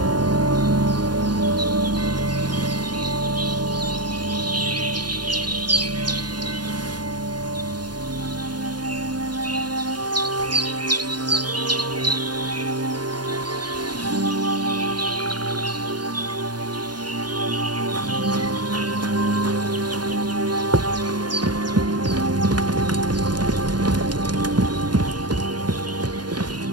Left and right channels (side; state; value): left; late; 0.70 ms